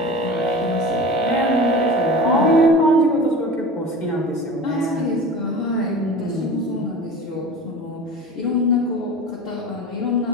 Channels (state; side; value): normal; both; correlation 0.35